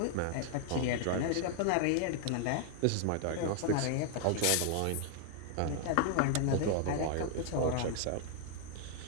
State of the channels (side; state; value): both; different; correlation -0.01